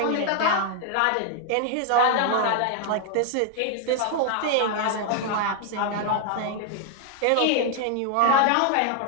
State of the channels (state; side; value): different; both; correlation 0.00